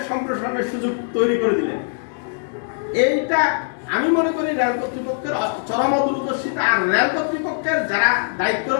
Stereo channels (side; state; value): right; silent; digital silence